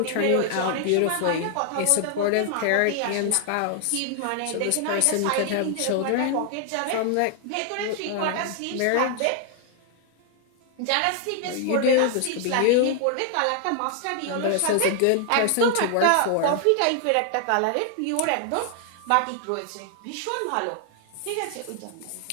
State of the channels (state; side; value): different; both; correlation 0.00